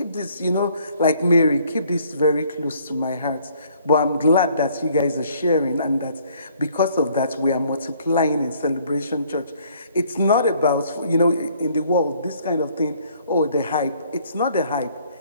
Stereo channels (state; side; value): inverted; both; correlation -0.61